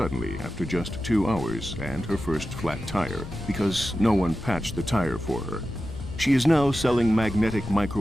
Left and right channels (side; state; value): left; noise; rumble, 12 dB below the sound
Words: after just 2 hours and her first flat tire, because no one patched the tire for her. She is now selling magnetic